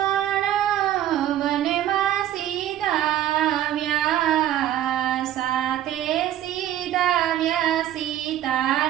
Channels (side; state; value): left; quieter; 12.1 dB